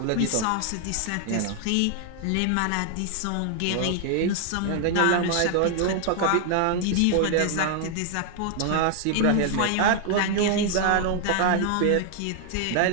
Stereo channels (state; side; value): different; both; correlation 0.00